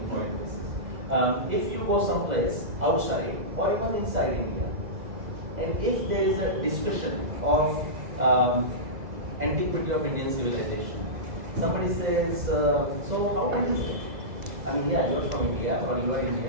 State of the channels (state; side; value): late; left; 2.0 ms